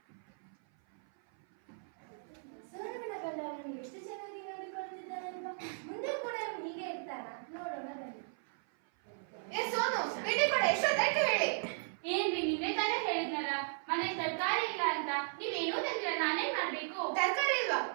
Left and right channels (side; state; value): left; silent; 54 dB below the other